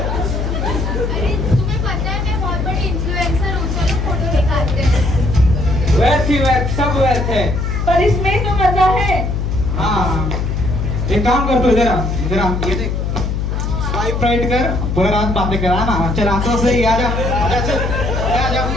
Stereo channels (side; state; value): left; noise; hum, 1 dB below the sound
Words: तुम्हें पता है मैं बहुत बड़ी इन्फ्लुएंसर हूँ, चलो फोटो निकालते हैं। व्यर्थ ही व्यर्थ, सब व्यर्थ है। पर इसमें तो मजा है। हाँ, एक काम कर तू, इधर आ, ये देख, स्वाइप राइट कर, पूरा रात बातें करा ना। चल आंखों से ही आजा, आजा चल, आजा।